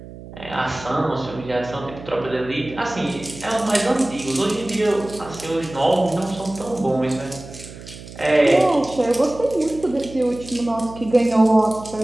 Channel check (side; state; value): right; noise; hum, 15 dB below the sound